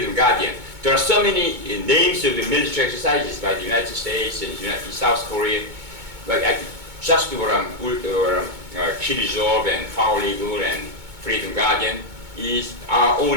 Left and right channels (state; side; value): late; left; 2.2 ms